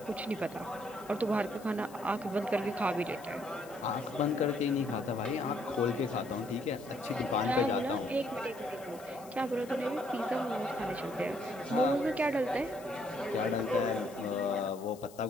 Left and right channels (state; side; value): noise; left; hiss, 21 dB below the sound